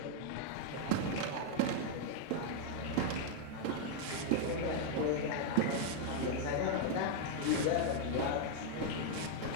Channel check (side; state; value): both; different; correlation 0.00